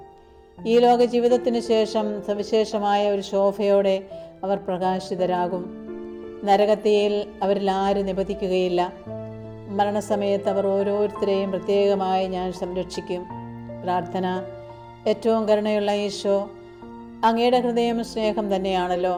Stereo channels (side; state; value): both; identical; correlation 1.00